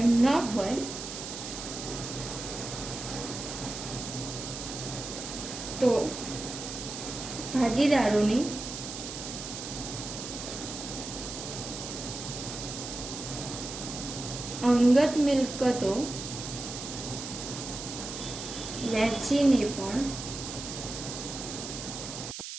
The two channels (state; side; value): noise; right; hiss, 8 dB below the sound